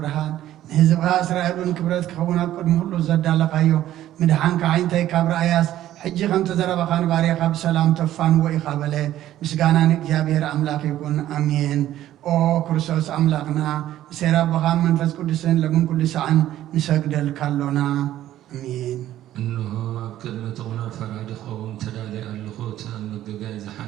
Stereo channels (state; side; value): quieter; left; 13.1 dB